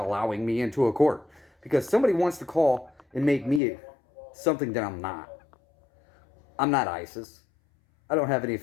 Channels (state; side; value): drops out; right; at 3.6 s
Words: allowing me into a court. Because somebody wants to call and make me something that I'm not. I'm not ISIS. I don't have any